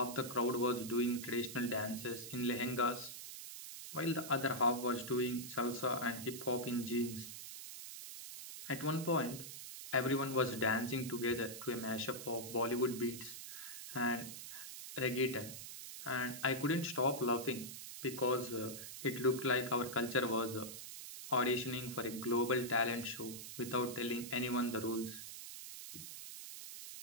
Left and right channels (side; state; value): right; noise; hiss, 10 dB below the sound